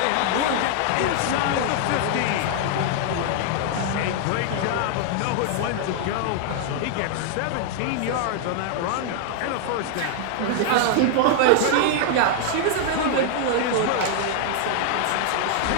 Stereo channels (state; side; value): different; both; correlation 0.00